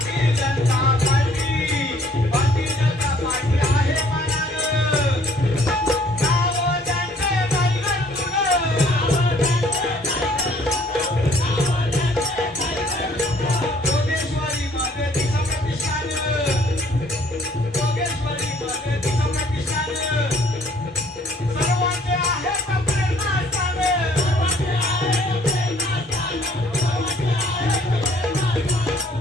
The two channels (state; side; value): normal; both; correlation 0.60